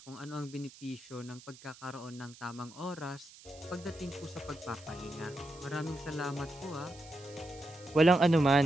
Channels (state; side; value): noise; right; hiss, 20 dB below the sound